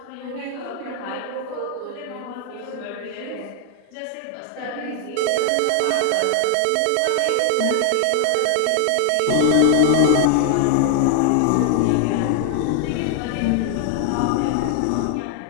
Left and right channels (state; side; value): different; both; correlation 0.00